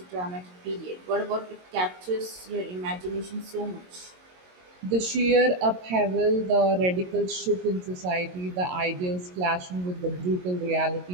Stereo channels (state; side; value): late; left; 22 ms